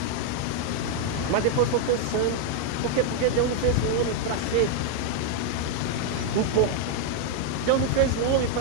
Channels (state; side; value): different; both; correlation 0.01